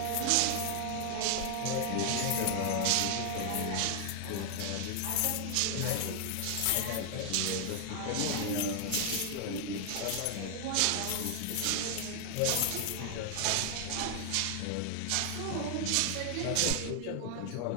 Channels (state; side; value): different; both; correlation 0.00